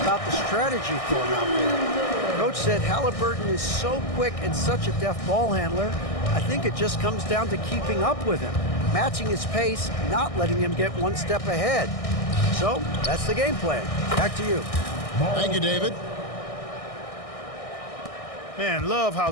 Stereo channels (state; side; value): late; right; 1.6 ms